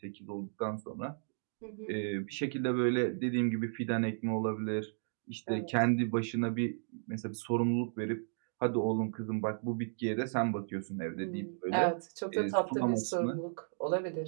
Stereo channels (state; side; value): silent; left; digital silence